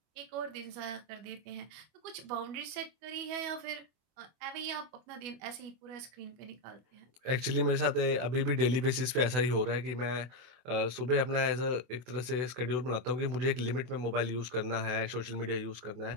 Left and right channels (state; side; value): late; left; 24 ms